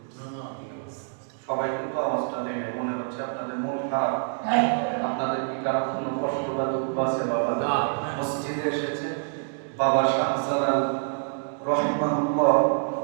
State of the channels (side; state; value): left; silent; 61 dB below the other